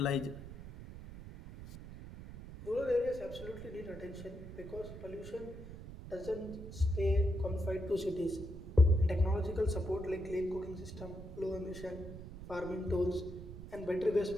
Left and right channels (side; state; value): right; noise; rumble, 12 dB below the sound